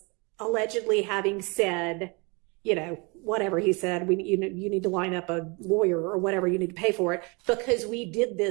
allegedly having said, whatever he said, you need to line up a lawyer or whatever, you need to pay for it because we did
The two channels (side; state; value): left; quieter; 29.7 dB